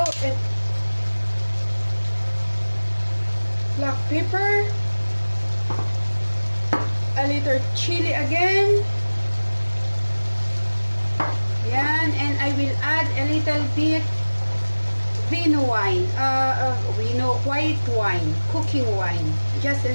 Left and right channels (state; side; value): inverted; both; correlation -1.00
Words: black pepper, a little chili again. Yan, and I will add a little bit vino wine, white wine, cooking wine, just a